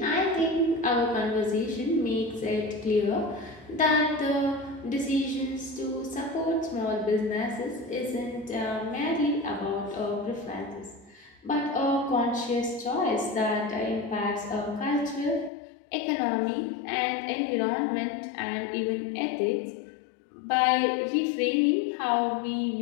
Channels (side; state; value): right; drops out; at 15.5 s